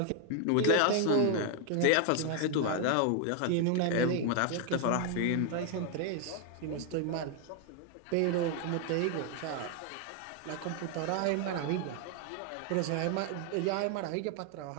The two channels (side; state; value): both; different; correlation 0.00